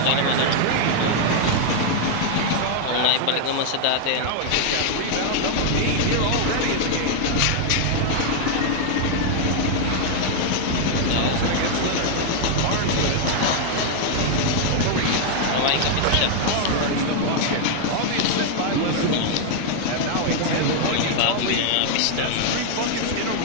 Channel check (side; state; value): both; different; correlation 0.00